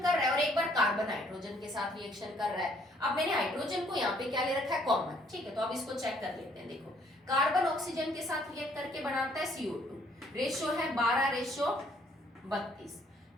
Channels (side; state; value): both; normal; correlation 0.64